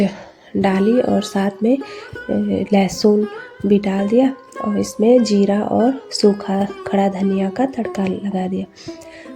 डाली और साथ में लहसुन भी डाल दिया, और इसमें जीरा और सूखा खड़ा धनिया का तड़का लगा दिया।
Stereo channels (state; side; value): identical; both; correlation 1.00